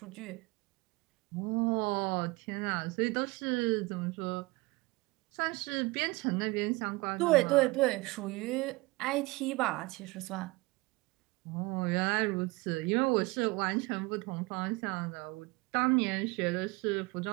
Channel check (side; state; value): left; quieter; 23.5 dB